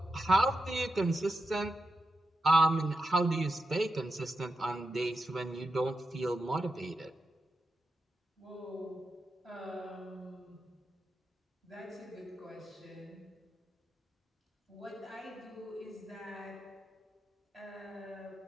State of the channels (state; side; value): normal; both; correlation 0.88